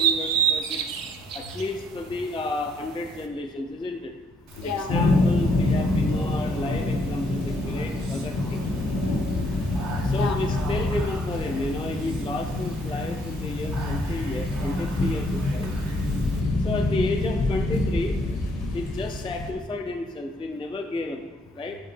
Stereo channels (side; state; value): both; normal; correlation 0.67